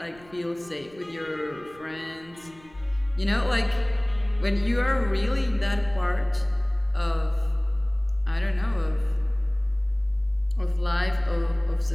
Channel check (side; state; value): right; noise; rumble, 25 dB below the sound